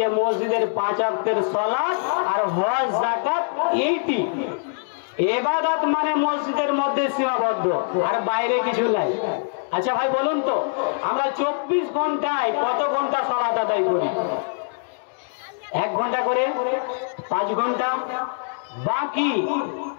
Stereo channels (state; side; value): silent; right; digital silence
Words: মসজিদের 5 ওয়াক্তের সালাত আর হজ যাকাত এইটি ইবাদত, মানে মসজিদের মধ্যে সীমাবদ্ধ আর বাইরে কিছু নাই। আচ্ছা ভাই বলুন তো, আমরা 24 ঘন্টায় কত ঘন্টা সালাত আদায় করি? 1 ঘন্টা করে 5 ঘন্টা, বাকি